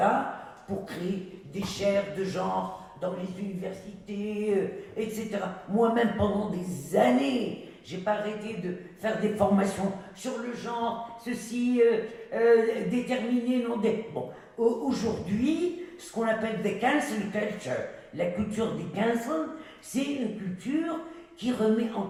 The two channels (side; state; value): both; identical; correlation 1.00